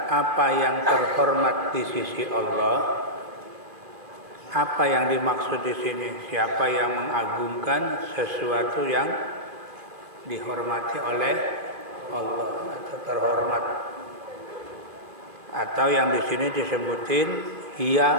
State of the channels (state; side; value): late; left; 2.5 ms